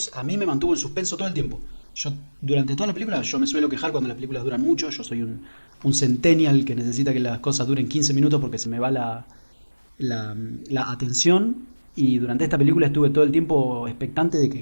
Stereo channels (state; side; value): inverted; both; correlation -1.00